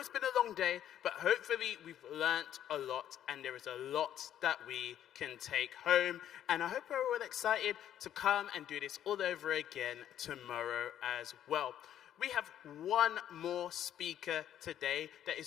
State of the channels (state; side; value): quieter; right; 10.8 dB